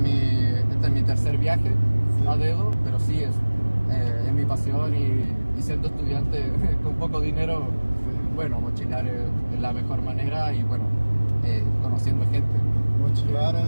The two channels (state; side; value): inverted; both; correlation -1.00